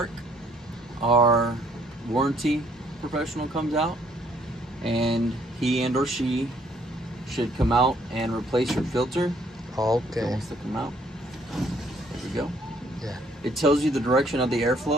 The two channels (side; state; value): both; normal; correlation 0.65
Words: our warranty professional comes out, and he and or she should come out and replace your filter. Okay. It wants to come out. There we go. Yeah. It tells you the direction of the